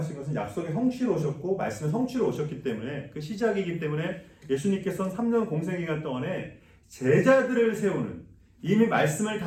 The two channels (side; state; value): both; identical; correlation 1.00